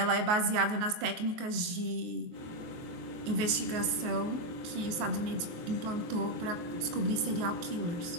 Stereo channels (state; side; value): late; left; 23 ms